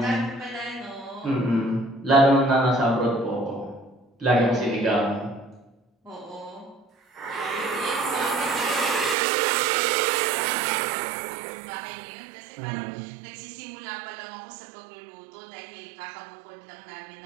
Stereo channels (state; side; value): drops out; left; at 9.2 s